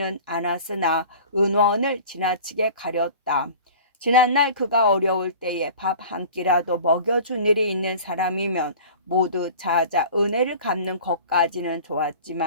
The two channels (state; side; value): inverted; both; correlation -0.41